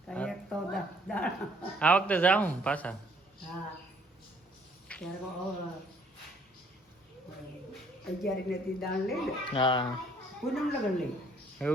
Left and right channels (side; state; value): both; normal; correlation 0.62